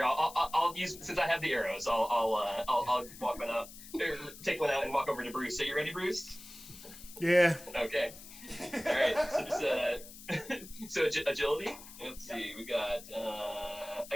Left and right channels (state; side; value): noise; left; hiss, 16 dB below the sound